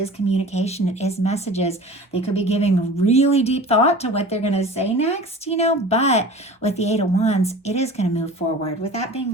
communication. It is messages. They could be giving really deep thought to what they're going to say next, but with the Eight of Wands, it is going to move forward. With that being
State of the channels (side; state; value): both; normal; correlation 0.39